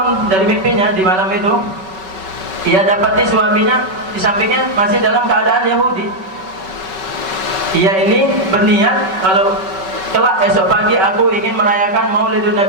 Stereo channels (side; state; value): left; late; 5.3 ms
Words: dari mimpinya di malam itu, ia dapati suaminya di sampingnya masih dalam keadaan Yahudi. Ia ini berniat, kalau kelak esok pagi aku ingin merayakan Maulidun